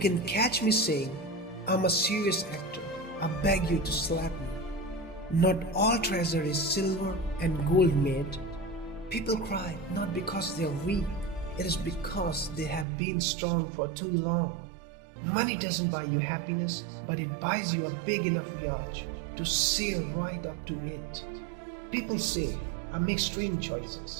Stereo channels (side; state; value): left; drops out; at 12.9 s